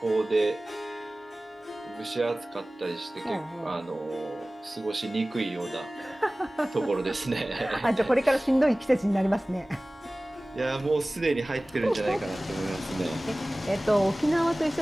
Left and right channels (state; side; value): normal; both; correlation 0.98